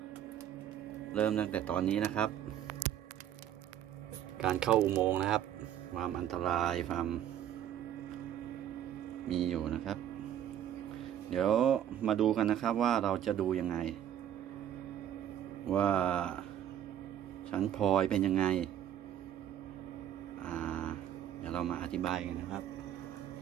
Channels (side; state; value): left; quieter; 10.7 dB